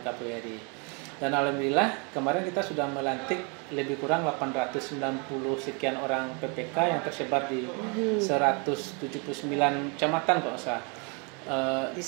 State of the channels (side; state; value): left; quieter; 34.2 dB